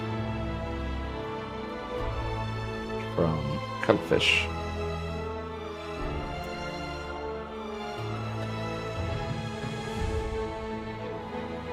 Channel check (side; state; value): both; identical; correlation 1.00